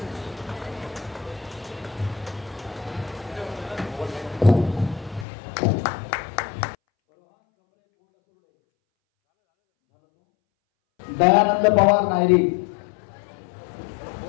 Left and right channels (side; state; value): right; drops out; at 5.2 s